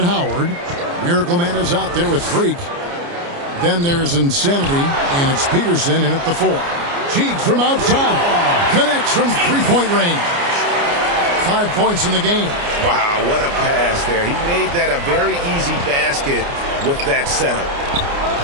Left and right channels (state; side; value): late; left; 29 ms